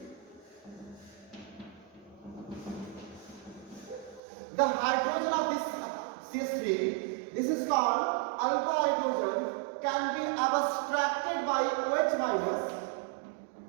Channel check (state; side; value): drops out; left; at 4.2 s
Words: the hydrogen of this CH3, this is called alpha hydrogen, can be abstracted by OH minus,